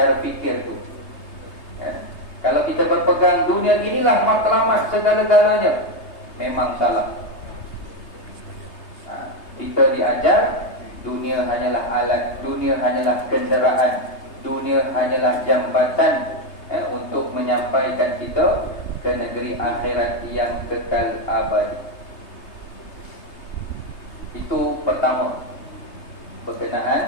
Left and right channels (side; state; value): right; late; 3.3 ms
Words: fikir tu. Ya. Kalau kita berpegang dunia inilah matlamat segala-galanya, memang salah. Kita diajar dunia hanyalah alat, dunia hanyalah kenderaan, dunia hanyalah jambatan, untuk menyampaikan kita ke negeri akhirat yang kekal abadi. Itu pertama,